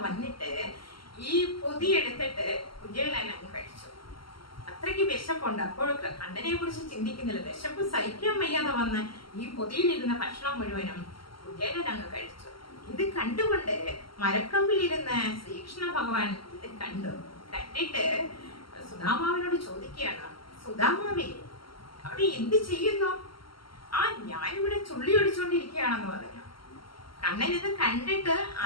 വന്നിട്ട് ഈ പൊതി എടുത്തിട്ട് കുചേലൻ അങ്ങ് കഴിച്ചു. അത്രയ്ക്ക് വിശപ്പുണ്ട്. അപ്പോൾ കണ്ണനെ കുറിച്ച് ചിന്തിക്കുന്നില്ല. വിശപ്പ് സഹിക്കാൻ വയ്യാതെ വന്ന് ഈ പൊതിയിലിരുന്ന ഭക്ഷണം മുഴുവനും കുചേലൻ അങ്ങ് കഴിച്ചു. ഇത് കണ്ടുകൊണ്ട് മരക്കമ്പിലിരുന്ന ശ്രീകൃഷ്ണ ഭഗവാൻ ഇത് കണ്ടിട്ട് സുദാമാവിനോട് ചോദിക്കുകയാണ്, സുദാമാവേ, അവിടെ എന്ത് ചെയ്യുന്നു? ഞാനിവിടെ ചുള്ളി ഒടിച്ചോണ്ടിരിക്കുകയാണെന്ന് പറഞ്ഞു. കണ്ണൻ ഇത് കണ്ടിട്ട്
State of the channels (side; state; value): right; late; 0.74 ms